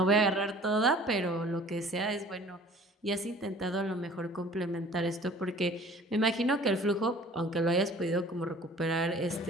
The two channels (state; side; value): normal; both; correlation 0.49